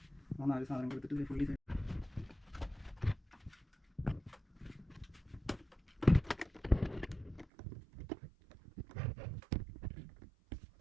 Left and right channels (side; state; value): left; drops out; at 7.5 s